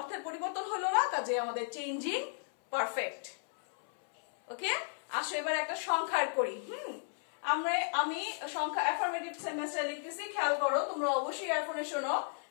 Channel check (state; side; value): silent; right; 55 dB below the other